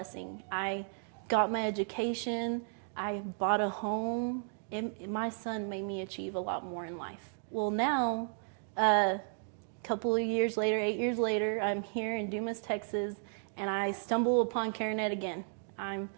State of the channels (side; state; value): left; silent; 55 dB below the other